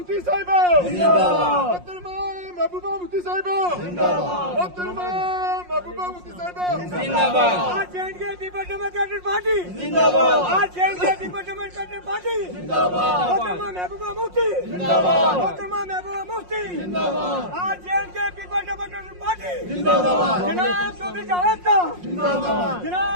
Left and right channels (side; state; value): left; late; 5.6 ms